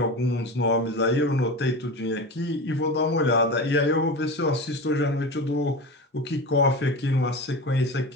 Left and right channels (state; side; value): normal; both; correlation 0.27